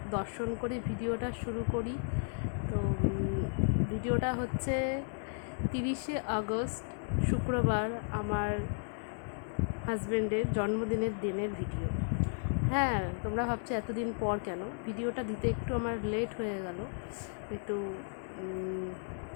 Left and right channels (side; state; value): right; silent; 55 dB below the other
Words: দর্শন করে ভিডিওটা শুরু করি। তো ভিডিওটা হচ্ছে 30শে আগস্ট শুক্রবার, আমার হাজব্যান্ডের জন্মদিনের দিনের ভিডিও। হ্যাঁ, তোমরা ভাবছো এতদিন পর কেন ভিডিওটা দিতে, একটু আমার লেট হয়ে গেল, একটু